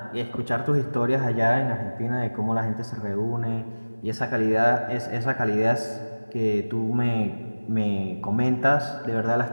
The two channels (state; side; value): inverted; both; correlation -1.00